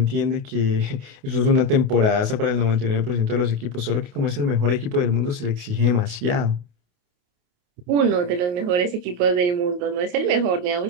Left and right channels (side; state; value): left; late; 28 ms